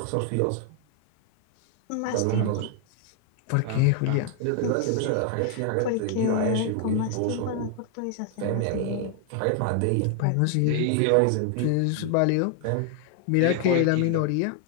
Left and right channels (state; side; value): different; both; correlation 0.00